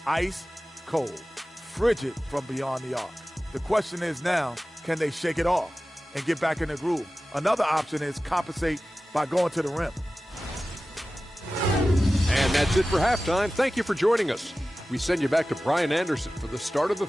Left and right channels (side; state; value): both; normal; correlation 0.96